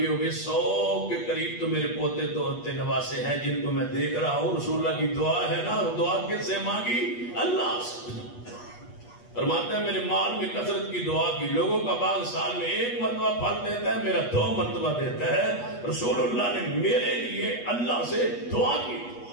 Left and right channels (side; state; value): right; late; 8.3 ms